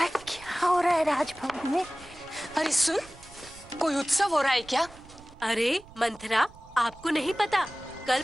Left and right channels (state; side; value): noise; right; rumble, 21 dB below the sound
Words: क्या हो रहा है राजभवन में? अरे सुन, कोई उत्सव हो रहा है क्या? अरे मंथरा, आपको नहीं पता, कल